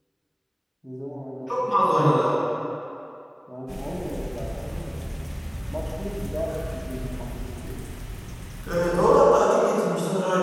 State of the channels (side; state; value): both; identical; correlation 1.00